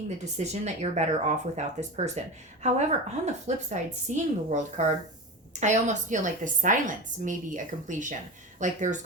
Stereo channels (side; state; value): both; normal; correlation 0.26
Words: the decision that you're better off without this person. However, on the flip side, seeing the World card, I almost feel like the silence may be a completion. Like there's